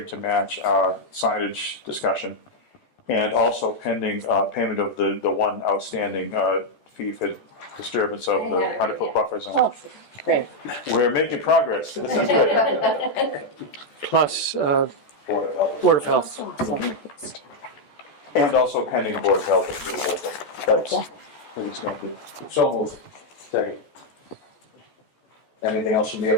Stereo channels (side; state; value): right; late; 14 ms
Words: to match our signage discussion. And also pending payment of the one outstanding fee for disturbance of the 100-foot buffer zone. Oh, great. We're making progress. This is good. Plus Board of Health. Board of Health. And also pending board of health approval. That's please make it. So moved. Second. Anything else from the